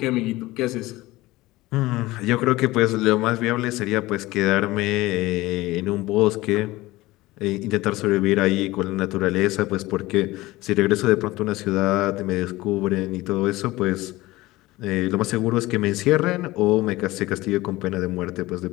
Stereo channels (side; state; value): right; quieter; 19.0 dB